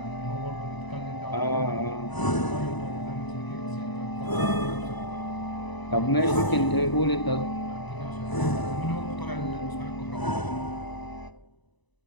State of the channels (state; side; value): late; right; 1.0 ms